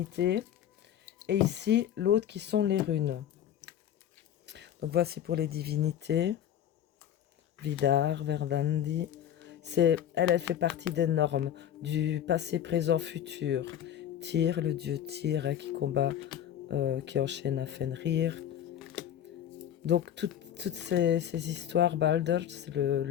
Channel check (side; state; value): right; quieter; 10.3 dB